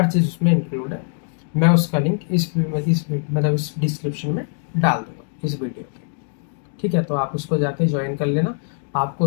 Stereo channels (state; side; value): silent; right; 64 dB below the other